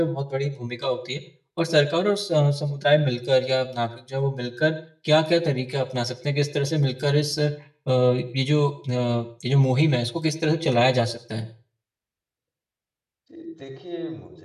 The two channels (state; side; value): identical; both; correlation 1.00